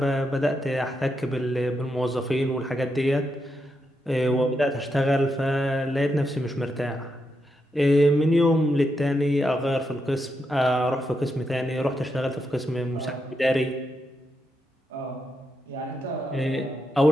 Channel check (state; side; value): normal; both; correlation 0.83